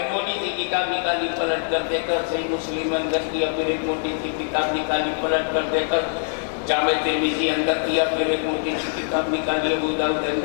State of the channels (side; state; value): right; silent; 63 dB below the other